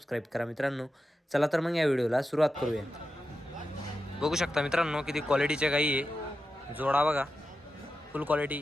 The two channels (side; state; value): both; normal; correlation 0.91